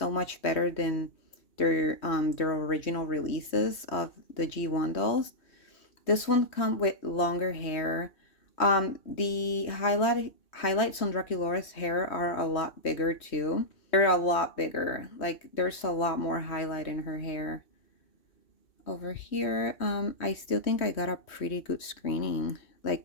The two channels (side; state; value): right; late; 3.1 ms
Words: much better than their original releases of the G1 dolls. This one come with longer hair. The highlights on Draculaura's hair are a lot bigger too. They're a lot bigger. Like there's a lot more highlight in her hair. Over here, I still think I got a pretty good screening.